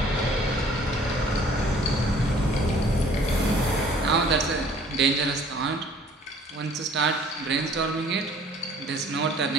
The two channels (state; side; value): normal; both; correlation 0.55